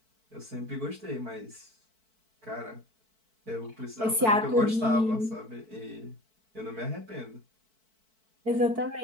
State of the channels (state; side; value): late; left; 4.5 ms